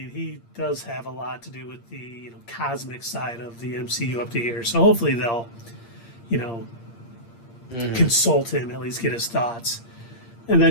he does have a lot to do with the, you know, cosmic side of the MCU up to here. So hopefully they'll, you know, consult him, at least get his thoughts. And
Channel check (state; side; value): late; right; 8.6 ms